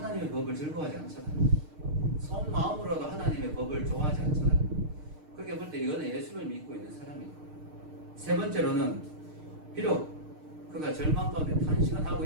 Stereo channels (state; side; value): late; left; 6.5 ms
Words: 법을 즐거워하지 않잖아요. 속마음으로도 하나님의 법을 좋아하지 않잖아요. 그렇게 볼 때 이거는 예수를 믿고 있는 사람이에요. 세 번째로는 비록 그가 절망 가운데 탄식은 하고